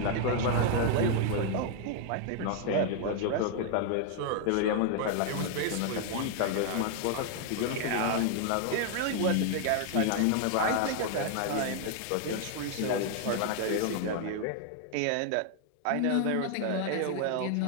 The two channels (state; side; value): different; both; correlation 0.00